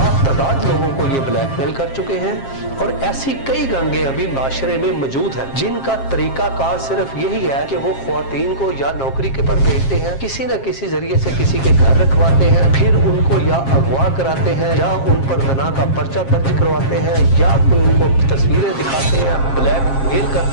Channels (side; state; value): right; late; 7.5 ms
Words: तादाद लोगों को ये ब्लैकमेल कर चुके हैं। और ऐसी कई गैंगें अभी माशरे में मौजूद हैं जिनका तरीका कार सिर्फ यही है कि वो ख्वातीन को या नौकरी के पर भेजते हैं, किसी न किसी जरिए से किसी के घर रखवाते हैं, फिर उनको या अगवा कराते हैं या उन पर ज़ना का पर्चा दर्ज करवाते हैं या कोई उनको तस्वीरें दिखाते हैं, ब्लैकमेल